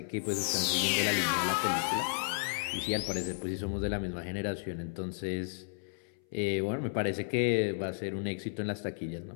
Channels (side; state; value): right; silent; 56 dB below the other